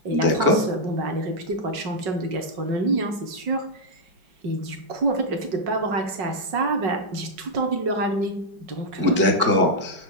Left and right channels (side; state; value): left; late; 5.4 ms